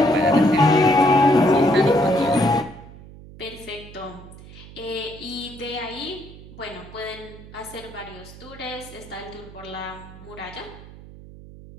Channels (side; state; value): right; noise; hum, 18 dB below the sound